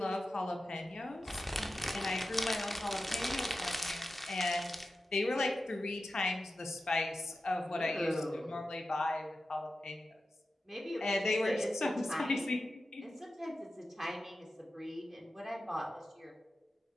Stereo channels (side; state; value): both; normal; correlation 0.93